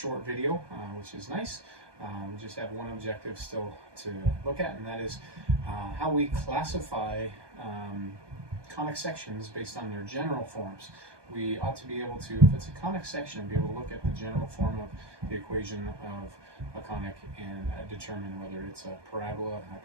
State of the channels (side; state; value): left; late; 1.2 ms